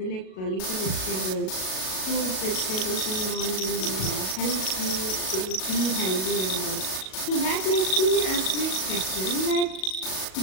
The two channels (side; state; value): right; late; 37 ms